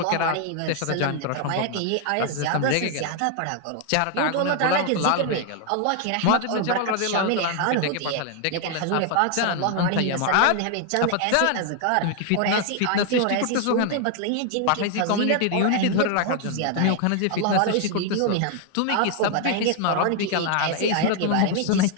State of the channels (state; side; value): different; both; correlation 0.00